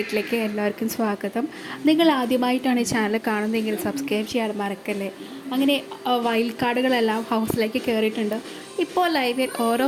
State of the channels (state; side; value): identical; both; correlation 1.00